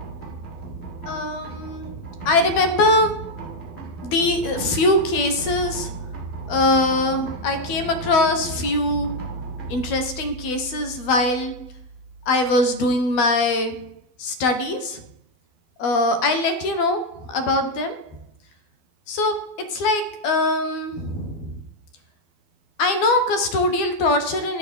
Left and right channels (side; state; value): right; late; 12 ms